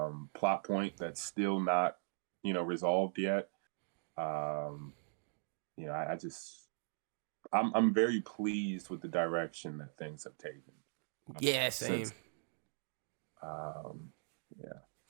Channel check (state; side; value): silent; left; digital silence